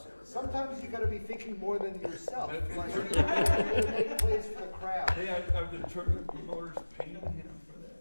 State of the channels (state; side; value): inverted; both; correlation -1.00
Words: it. Sometimes you gotta be thinking more than yourself. Like, you gotta make plays for the crowd. Hey, are the tournament promoters paying him for